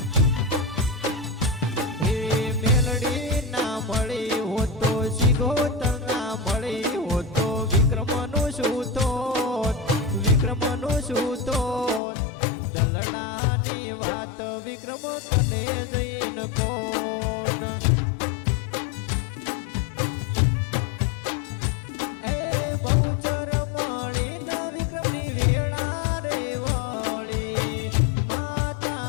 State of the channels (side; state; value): right; drops out; at 12.0 s